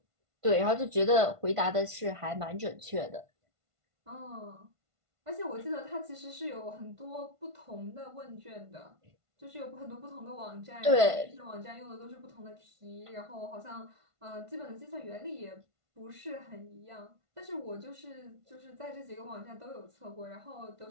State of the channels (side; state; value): left; late; 1.5 ms